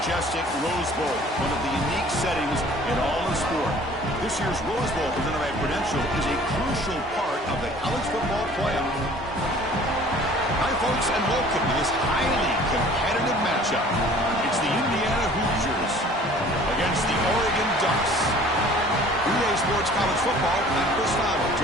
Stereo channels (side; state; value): both; normal; correlation 0.50